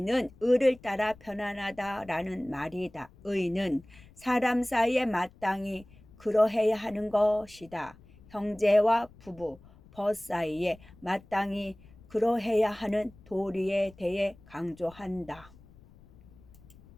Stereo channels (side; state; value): left; noise; rumble, 24 dB below the sound